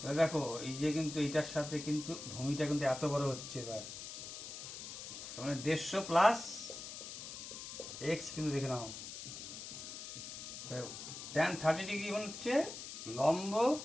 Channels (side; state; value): left; noise; hiss, 9 dB below the sound